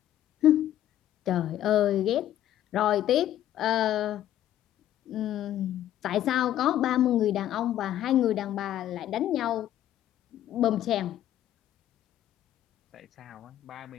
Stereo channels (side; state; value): right; quieter; 12.1 dB